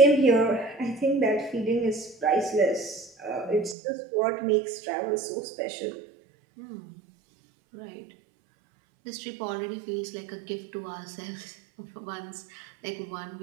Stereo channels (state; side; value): drops out; left; at 3.8 s